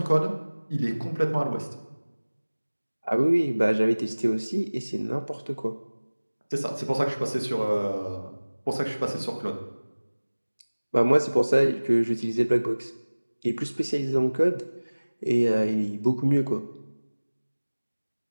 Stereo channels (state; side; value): inverted; both; correlation -1.00